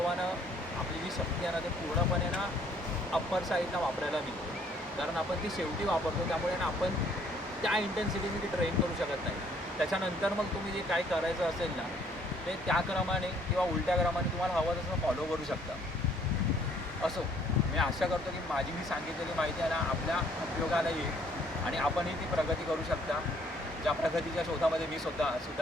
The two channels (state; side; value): normal; both; correlation 0.62